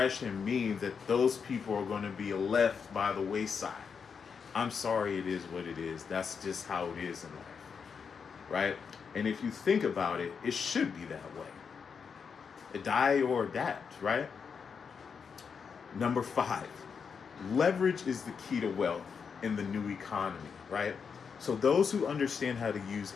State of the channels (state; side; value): quieter; right; 6.2 dB